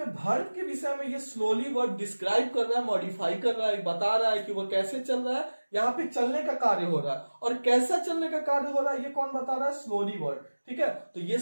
वर्ब के विषय में ये स्लोली वर्ब डिस्क्राइब कर रहा है, मॉडिफाई कर रहा है, बता रहा है कि वो कैसे चल रहा है। यहाँ पे चलने का कार्य हो रहा है, और कैसा चलने का कार्य हो रहा है ये कौन बता रहा है, स्लोली वर्ड। ठीक है, तो ये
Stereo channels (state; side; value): inverted; both; correlation -1.00